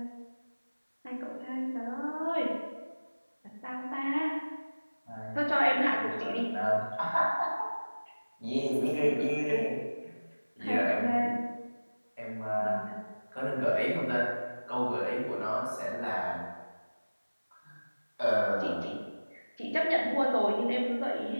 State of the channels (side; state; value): both; inverted; correlation -1.00